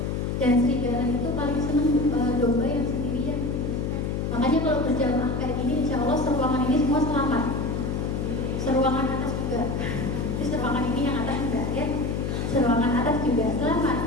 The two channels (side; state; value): left; noise; hum, 1 dB below the sound